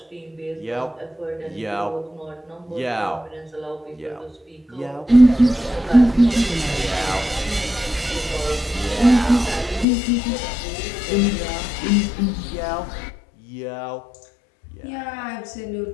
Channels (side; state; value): right; drops out; at 9.9 s